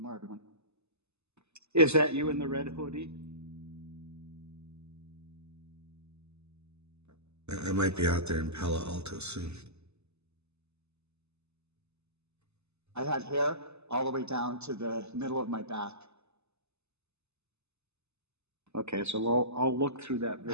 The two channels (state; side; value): late; left; 0.80 ms